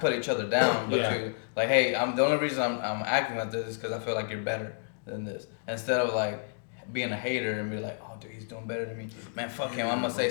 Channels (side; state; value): right; silent; digital silence